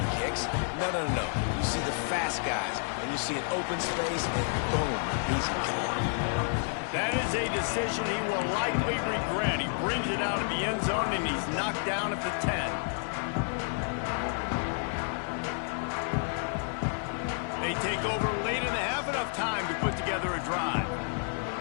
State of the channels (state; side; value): silent; right; 56 dB below the other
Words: kicks. No. You see the fast guys, and you see an open space, and boom, he's gone. That is a decision he will likely regret. He brings it out of the end zone, and he's knocked down at the 10. They take over late in the half, enough time to put together a drive.